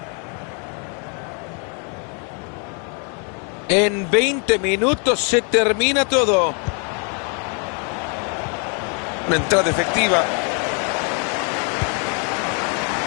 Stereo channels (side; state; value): right; quieter; 38.9 dB